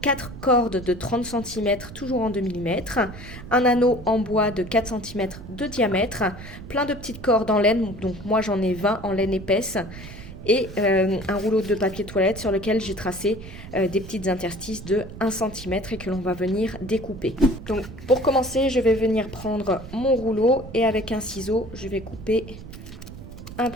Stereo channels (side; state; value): right; noise; rumble, 14 dB below the sound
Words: 4 cordes de 30 cm toujours en 2 mm, un anneau en bois de 4 cm de diamètre, plein de petites cordes en laine, donc moi j'en ai 20 en laine épaisse, et un rouleau de papier toilette sur lequel j'ai tracé des petites interstices de 1 cm et que l'on va venir découper. Donc pour commencer, je vais venir prendre mon rouleau et avec un ciseau, je vais couper un